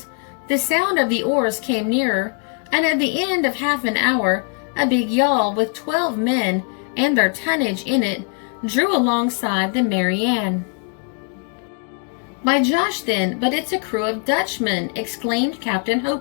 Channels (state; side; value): quieter; right; 37.3 dB